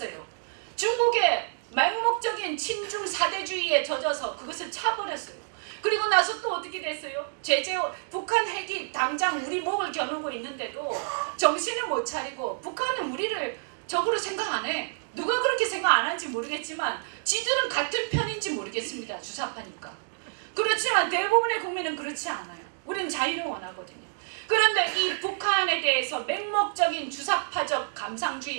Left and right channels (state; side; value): silent; left; digital silence